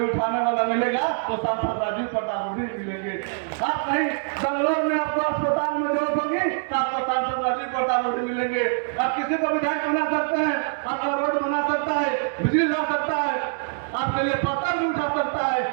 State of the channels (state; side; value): silent; left; digital silence